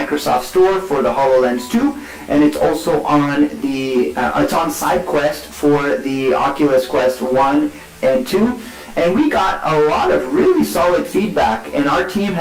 Store for the HoloLens 2, and it's also on it's on SideQuest for the Oculus Quest 1 and 2. And we got a lot of really solid feedback, and our team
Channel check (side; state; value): both; identical; correlation 1.00